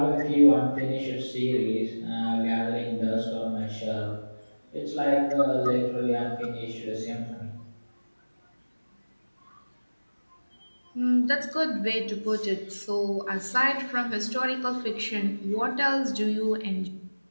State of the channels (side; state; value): both; inverted; correlation -1.00